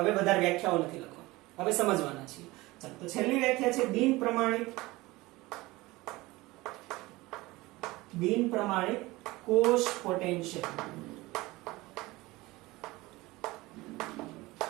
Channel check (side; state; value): left; quieter; 20.6 dB